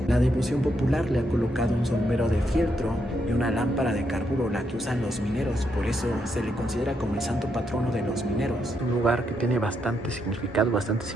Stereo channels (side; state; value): both; normal; correlation 0.79